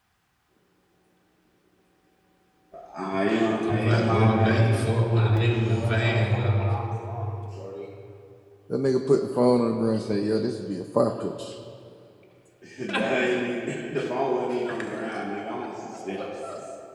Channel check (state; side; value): identical; both; correlation 1.00